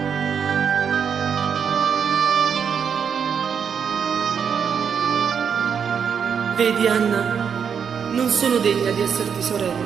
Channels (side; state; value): left; quieter; 7.1 dB